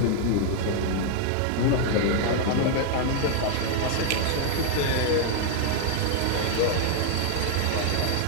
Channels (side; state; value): both; different; correlation 0.00